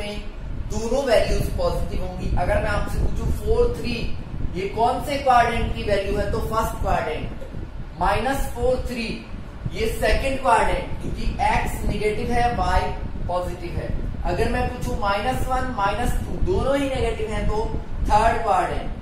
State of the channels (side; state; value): both; identical; correlation 1.00